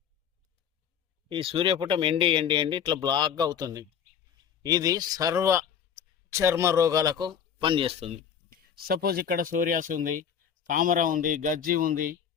ఈ సూర్యపుటం ఎండి ఎండి ఎండి ఇట్లా బ్లాక్గా అవుతుంది. ఇది సర్వ చర్మ రోగాలకు పనిచేస్తుంది. సపోజ్ ఇక్కడ సోరియాస్ ఉంది, తామర ఉంది, గజ్జి ఉంది,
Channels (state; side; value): quieter; right; 7.9 dB